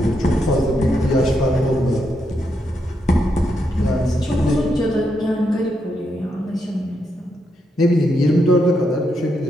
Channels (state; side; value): normal; both; correlation 0.81